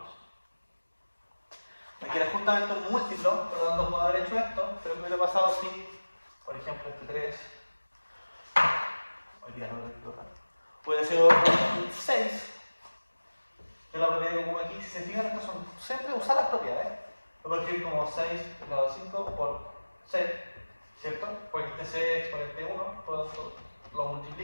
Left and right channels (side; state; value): both; inverted; correlation -1.00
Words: Me queda justamente un múltiplo, por lo tanto puedo haber hecho esto, pero ¿qué hubiera pasado si, por ejemplo, este 3, hoy día no lo he raro, puede ser un 6, que es la propiedad que pongo aquí. Si se fijan, estas son siempre usar las propiedades. Lo puedo escribir como 6 elevado a 5 por c, ¿cierto? Porque este c es exponente 1, por lo tanto lo